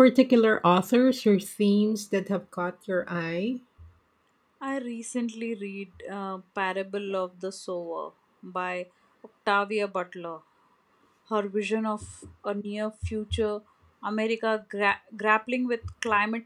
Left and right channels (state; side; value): identical; both; correlation 1.00